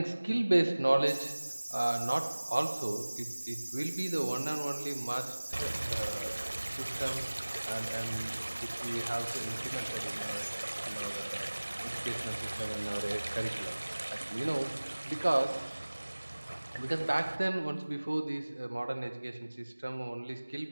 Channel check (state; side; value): inverted; both; correlation -1.00